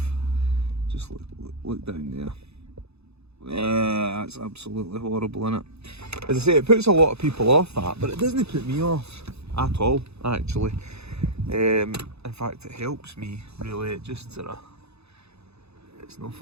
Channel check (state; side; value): late; left; 0.79 ms